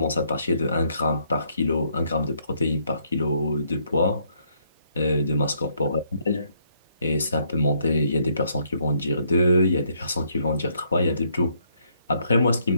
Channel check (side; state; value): both; inverted; correlation -0.71